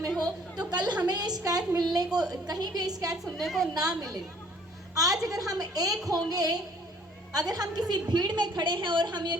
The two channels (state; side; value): normal; both; correlation 0.57